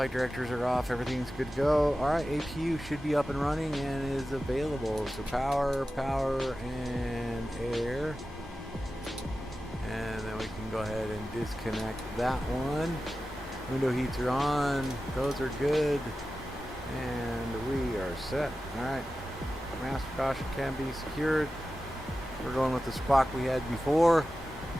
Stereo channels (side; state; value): both; normal; correlation 0.94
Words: directors are off. Everything's good to go. All right. APU should be up and running and is available. So power, and air. And then we can go ahead and disconnect that one. Window heats are on. Those are good. And we are set. All right. Master caution can be secured. We're going with the squawk we had before.